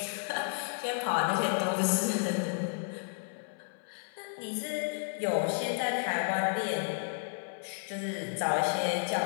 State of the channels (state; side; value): silent; right; 56 dB below the other